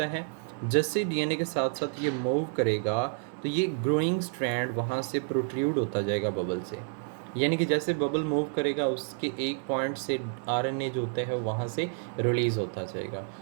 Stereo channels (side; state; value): left; silent; 58 dB below the other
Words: है। जैसे डीएनए के साथ साथ ये मूव करेगा तो ये ग्रोइंग स्ट्रैंड वहाँ से प्रोट्रूड होता जाएगा बबल से। यानी कि जैसे बबल मूव करेगा उसके एक पॉइंट से आरएनए जो होता है वहाँ से रिलीज़ होता जाएगा